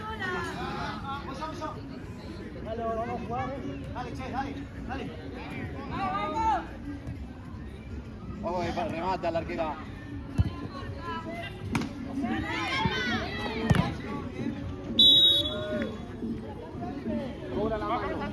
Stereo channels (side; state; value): both; identical; correlation 1.00